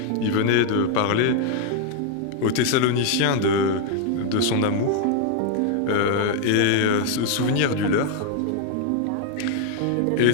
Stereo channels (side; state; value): both; different; correlation 0.00